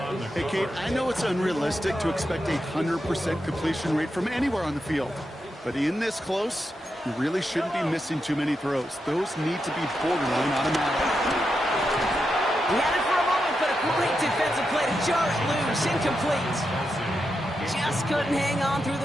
Hey, Kate, I know it's unrealistic to expect a 100% completion rate from anywhere on the field. But in this close, you really shouldn't be missing too many throws. Those need to be borderline automatic. He had it for a moment, but a great defensive play to jar it loose. Incomplete. Just couldn't hang on through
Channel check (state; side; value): normal; both; correlation 0.86